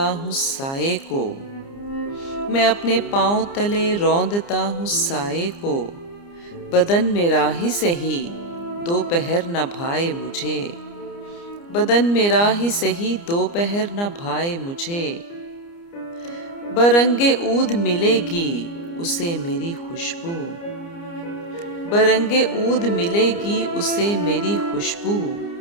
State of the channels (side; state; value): right; late; 29 ms